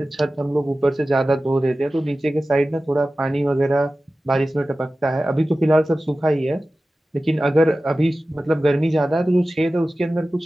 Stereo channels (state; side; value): normal; both; correlation 0.95